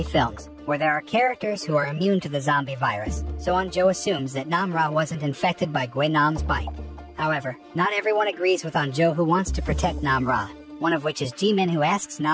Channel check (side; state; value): both; identical; correlation 1.00